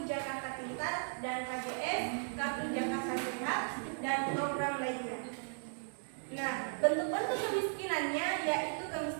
Jakarta Pintar dan KJS, Kartu Jakarta Sehat dan program lainnya. Nah, bentuk-bentuk kemiskinannya yaitu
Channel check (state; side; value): silent; left; digital silence